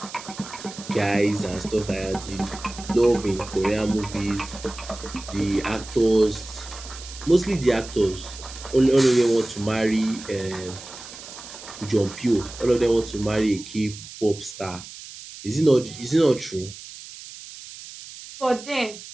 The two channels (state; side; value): noise; right; hiss, 14 dB below the sound